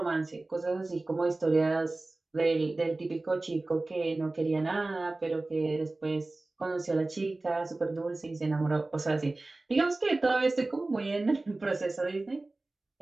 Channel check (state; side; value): quieter; left; 3.1 dB